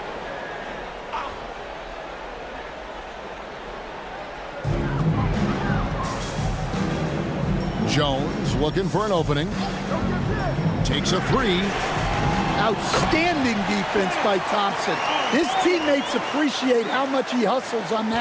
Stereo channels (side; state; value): both; identical; correlation 1.00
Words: Jones looking for an opening. Takes a 3. Outstanding defense by Thompson. His teammates appreciate how much he hustles on